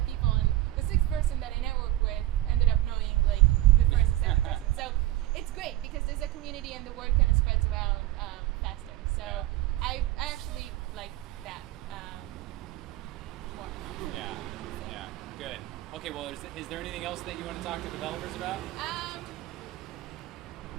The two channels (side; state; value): left; quieter; 15.5 dB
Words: people, and the 6th person that I networked with ended up knowing like the first and 7th person. So it's great because there's a community and the word kind of spreads around faster. So I actually like that more. Yeah. Good. Okay. Well, is there anything else that you want to talk to developers about?